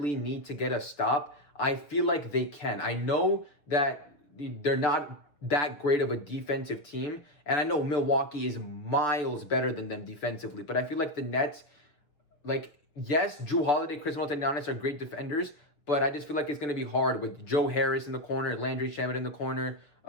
need to get a stop, I feel like they can. I know that they're not that great of a defensive team, and I know Milwaukee is miles better than them defensively, but I feel like the Nets, yes, Jrue Holiday, Khris Middleton, Giannis are great defenders, but I just feel like it's going to be hard with Joe Harris in the corner, Landry Shamet in the corner.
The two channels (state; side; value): late; right; 7.0 ms